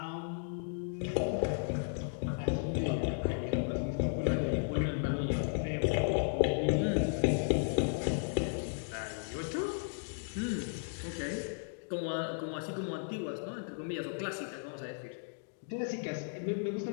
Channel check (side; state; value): right; silent; digital silence